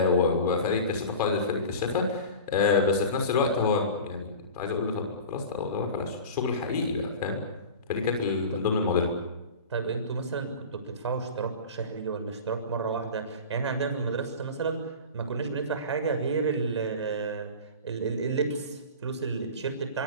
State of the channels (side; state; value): both; inverted; correlation -0.34